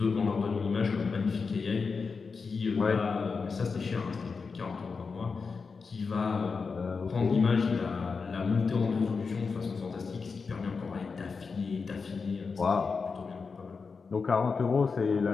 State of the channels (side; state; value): right; quieter; 4.9 dB